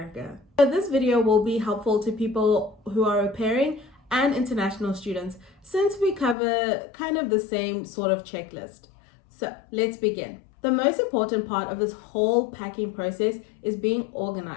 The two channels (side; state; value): right; drops out; at 6.4 s